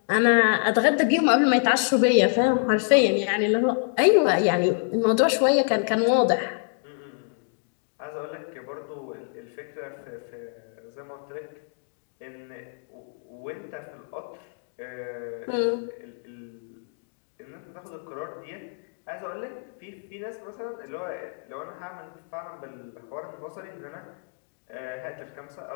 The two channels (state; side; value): silent; right; digital silence